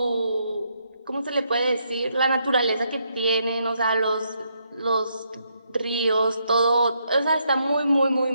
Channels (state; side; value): inverted; both; correlation -0.77